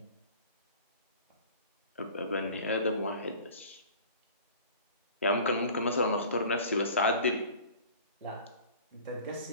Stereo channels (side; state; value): both; inverted; correlation -0.44